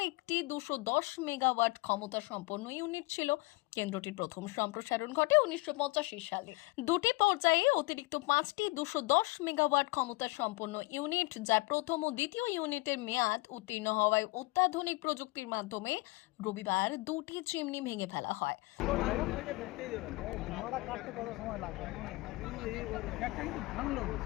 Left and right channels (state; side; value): quieter; right; 23.4 dB